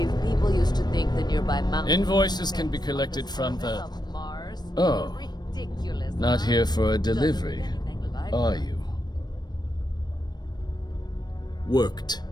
people used to think the nearby mountain... Invoices can be collected from the... of Mars? Oh. Ridiculous. Not huh? here for a Doesn't delivery, look anything like are it. you? Worked.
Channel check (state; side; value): late; right; 0.20 ms